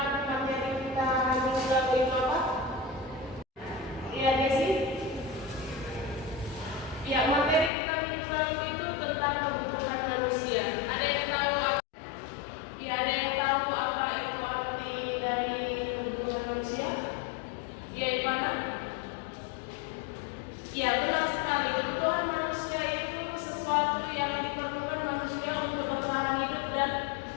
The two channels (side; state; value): right; drops out; at 7.7 s